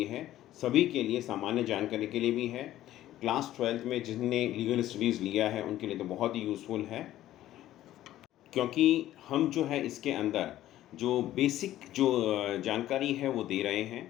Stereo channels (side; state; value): right; quieter; 13.7 dB